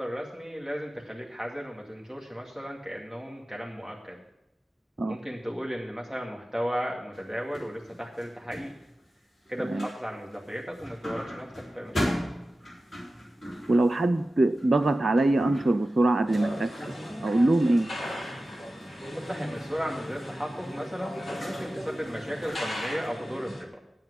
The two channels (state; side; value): normal; both; correlation 0.95